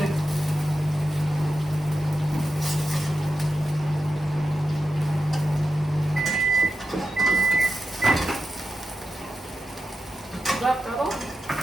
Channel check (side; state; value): both; normal; correlation 0.91